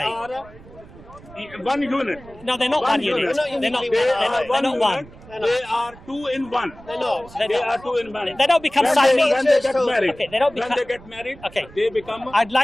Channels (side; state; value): right; noise; rumble, 21 dB below the sound